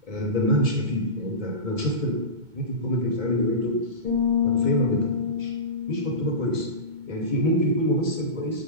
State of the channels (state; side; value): late; left; 2.2 ms